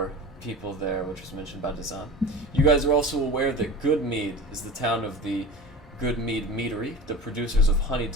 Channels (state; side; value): normal; both; correlation 0.34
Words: people there, which was mentioned by Dazan. You guys are also aware that Goodmead is the town of the Goodmead Meadery, the producers of